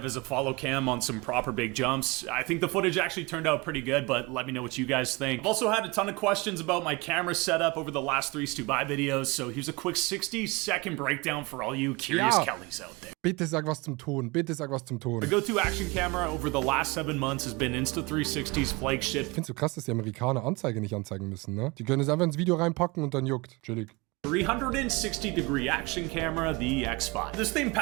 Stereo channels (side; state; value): left; quieter; 25.4 dB